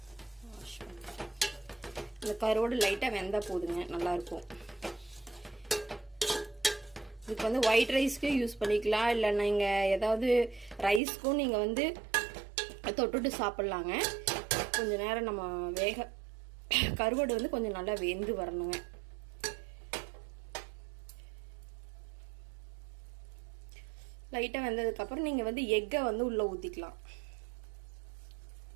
வாஷ் பண்ணி இந்த கருவோடு லைட்டாக வெந்தால் போதுங்க, நல்லாயிருக்கும். இதுக்கு வந்து ஒயிட் ரைஸ்க்கு யூஸ் பண்ணிக்கலாம், இல்லை நீங்கள் ஏதாவது ரைஸ்க்கும் நீங்கள் வந்து தொட்டுட்டு சாப்பிட்லாங்க. கொஞ்சம் நேரம் நம்ம கருவாடு வந்து கொஞ்சம் நல்லா வெந்து வரணுங்க. லைட்டாக வெந்ததுக்கப்புறம் நீங்கள் வந்து எக்கை வந்து உள்ளே ஊற்றிக்கலாம்.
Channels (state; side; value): drops out; left; at 11.0 s